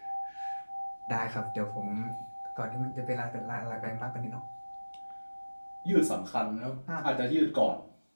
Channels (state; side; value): inverted; both; correlation -1.00